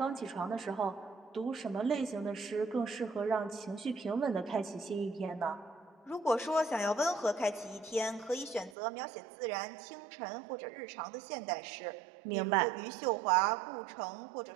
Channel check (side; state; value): left; drops out; at 8.8 s